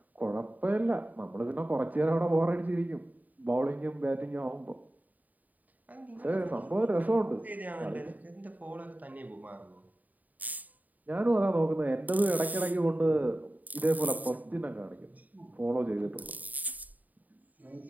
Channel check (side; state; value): left; late; 0.079 ms